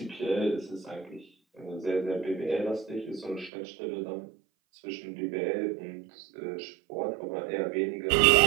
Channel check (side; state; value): left; drops out; at 3.5 s